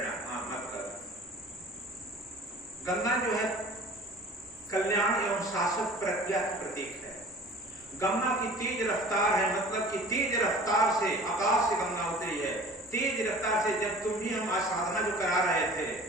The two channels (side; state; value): both; normal; correlation 0.44